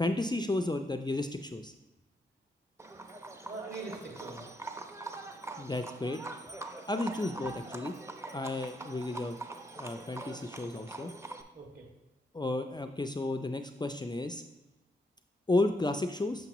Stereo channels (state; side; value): normal; both; correlation 0.78